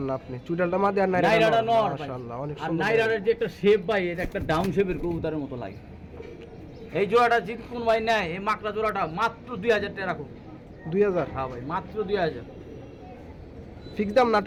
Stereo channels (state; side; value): identical; both; correlation 1.00